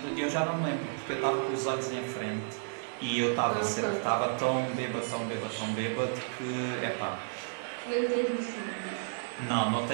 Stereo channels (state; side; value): silent; left; digital silence